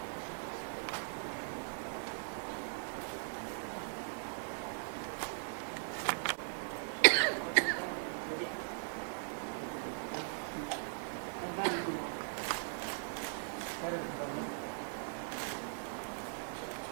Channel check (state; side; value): silent; left; digital silence